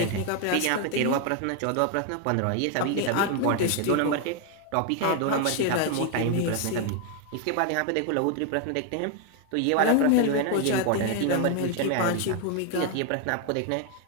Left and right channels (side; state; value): both; different; correlation 0.00